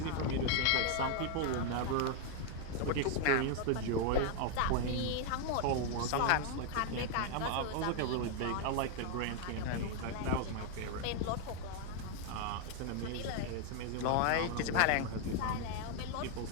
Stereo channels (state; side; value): different; both; correlation 0.00